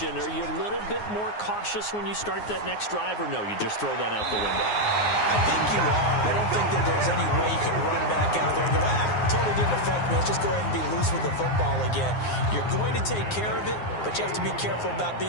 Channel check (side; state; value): right; late; 9.6 ms